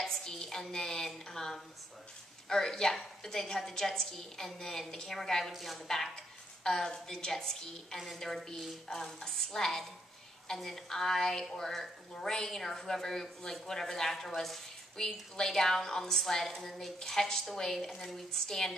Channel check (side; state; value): both; normal; correlation 0.74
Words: ski, and then, but they'd have the jet ski, and then the camera guy would be on the back of the jet ski, and then there would be a sled, and then I or Lorraine or whoever, like whatever the actor was, we'd lay down on the sled, and then they'd catch the wave, and then we'd